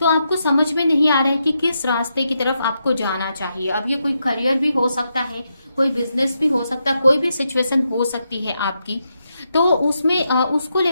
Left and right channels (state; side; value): inverted; both; correlation -0.83